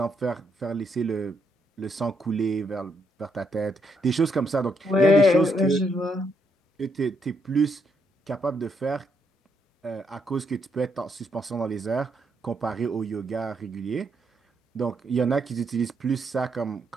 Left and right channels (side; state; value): both; normal; correlation 0.76